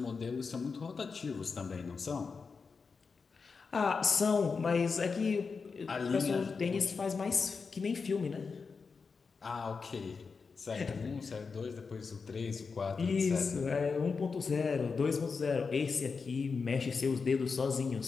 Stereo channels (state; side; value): quieter; right; 5.0 dB